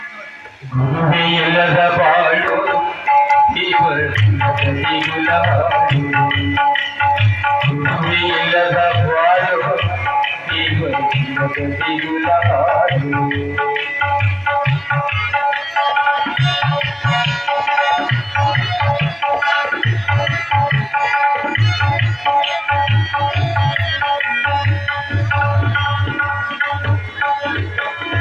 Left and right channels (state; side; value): identical; both; correlation 1.00